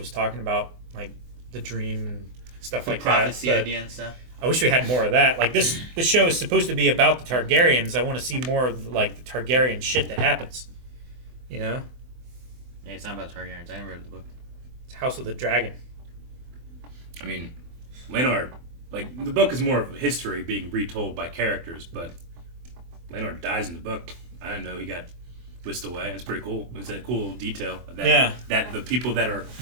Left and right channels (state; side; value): late; left; 24 ms